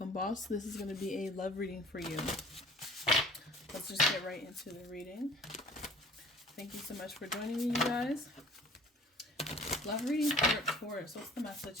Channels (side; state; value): both; normal; correlation 0.49